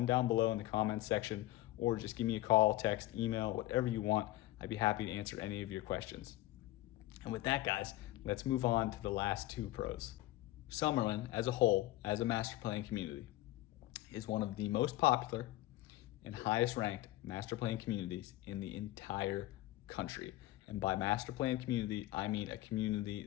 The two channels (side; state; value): right; quieter; 16.6 dB